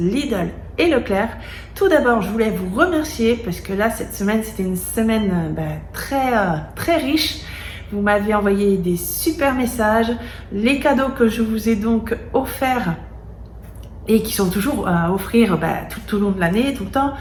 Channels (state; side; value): identical; both; correlation 1.00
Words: et Leclerc. Tout d'abord, je voulais vous remercier parce que là, cette semaine, c'était une semaine très riche. Vous m'avez envoyé des super messages. Les cadeaux que je vous ai donc offerts et qui sont toujours à offrir tout au long de l'année, tout le temps,